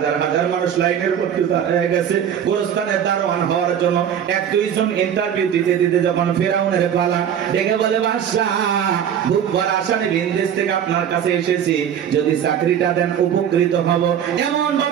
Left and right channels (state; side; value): quieter; left; 8.9 dB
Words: হাজার মানুষ লাইনের করতে হয়ে গেছে গোরস্থানের দারোয়ান হওয়ার জন্য। 1-2 জন ইন্টারভিউ দিতে দিতে যখন ফেরাউনের পালা, ডেকে বলে বাদশাহ খুব বড় আসামে বিদেশ থেকে আপনার কাছে এসেছি, যদি চাকরিটা দেন উপকৃত হব। এমন